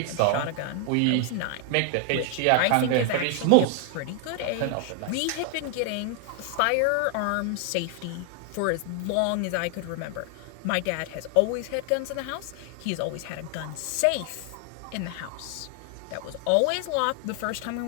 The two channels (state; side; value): different; both; correlation 0.00